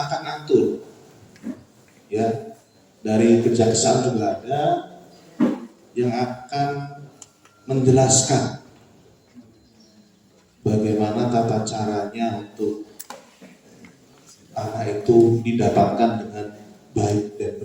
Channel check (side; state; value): both; identical; correlation 1.00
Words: akan atur. Ya, dari kejaksaan juga ada yang akan menjelaskan bagaimana tata caranya untuk tanah itu didapatkan dengan baik dan